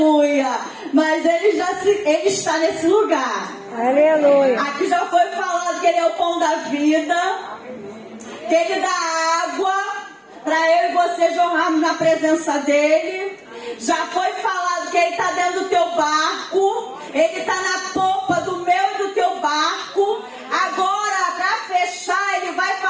Mas ele está nesse lugar. Aleluia. Aqui já foi falado que ele é o pão da vida, que ele dá água para eu e você jorrarmos na presença dele. Já foi falado que ele está dentro do teu barco, ele está na popa do meu e do teu barco. Agora, para fechar, ele vai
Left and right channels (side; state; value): both; identical; correlation 1.00